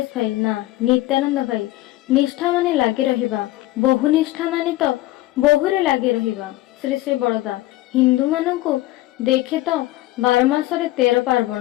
भाई ना। नित्यानंद भाई, निष्ठा माने लागी रहिबा, बहु निष्ठा माने तो बहुरे लागी रहिबा। श्री श्री बड़दा हिंदू मानू देखे तो 12 मासरे 13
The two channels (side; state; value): right; quieter; 17.2 dB